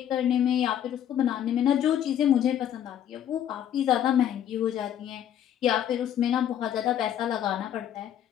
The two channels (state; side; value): quieter; right; 10.3 dB